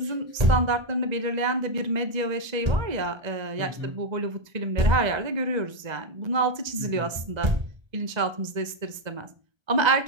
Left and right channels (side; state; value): left; late; 1.3 ms